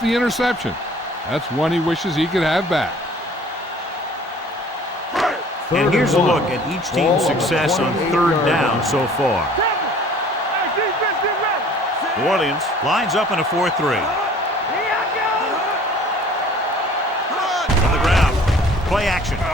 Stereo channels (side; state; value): both; normal; correlation 0.51